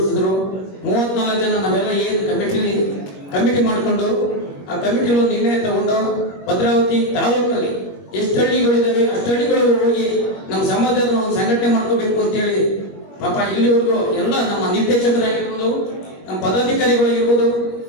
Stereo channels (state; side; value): late; right; 21 ms